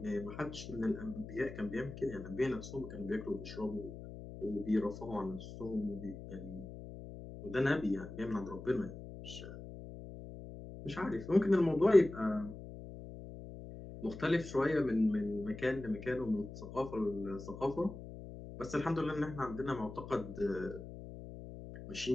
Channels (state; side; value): noise; left; hum, 12 dB below the sound